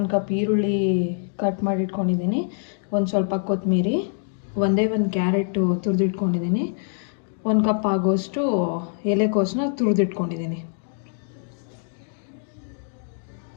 ಕಪ್ ಈರುಳ್ಳಿ ಕಟ್ ಮಾಡಿಟ್ಕೊಂಡಿದ್ದೀನಿ, ಒಂದು ಸ್ವಲ್ಪ ಕೊತ್ತಂಬರಿ, ಒಂದೇ ಒಂದು ಕ್ಯಾರೆಟು ತುರಿದಿಟ್ಕೊಂಡಿದ್ದೀನಿ, 1 ಕಪ್ ಆಗೋಷ್ಟು ಎಲೆಕೋಸನ್ನ ತುರಿದಿಟ್ಕೊಂಡಿದ್ದೀನಿ.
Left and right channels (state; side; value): silent; right; digital silence